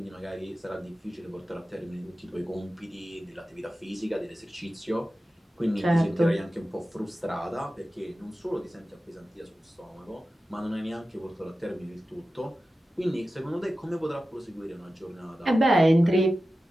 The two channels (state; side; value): normal; both; correlation 0.94